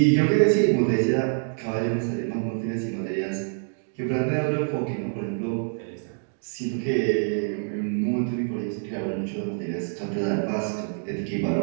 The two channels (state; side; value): silent; left; 61 dB below the other